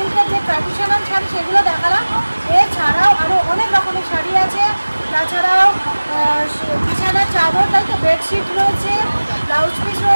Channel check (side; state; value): both; inverted; correlation -1.00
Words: যে ট্র্যাডিশনাল শাড়ি সেগুলো দেখালাম। এছাড়াও আরও অনেক রকমের শাড়ি আছে, তাছাড়াও বিছানার চাদর, তাই তো বেডশিট রয়েছে, ব্লাউজ পিস